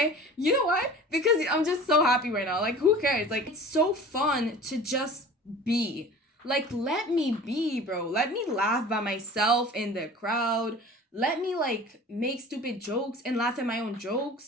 You know why? Because I'm just so happy right now. Like, who cares? Like, it's so fun to just be. Like, let me be, bro. Let me laugh by myself in the crowd. Let me, like, make stupid jokes and laugh at my own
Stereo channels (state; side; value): normal; both; correlation 0.40